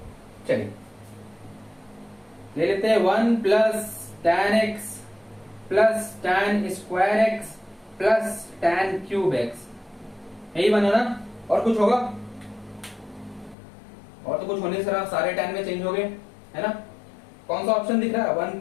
चलिए ले लेते हैं 1 plus tan x plus tan square x plus tan cube x, यही बना ना। और कुछ होगा, और तो कुछ होने से सारे tan में चेंज हो गए, है ना। कौन सा ऑप्शन दिख रहा है, 1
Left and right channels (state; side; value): drops out; right; at 13.6 s